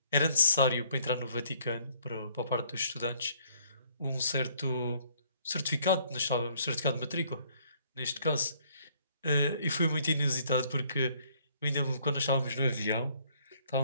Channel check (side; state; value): both; inverted; correlation -0.64